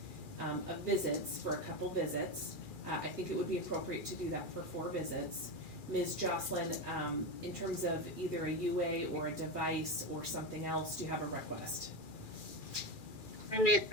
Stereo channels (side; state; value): right; late; 2.4 ms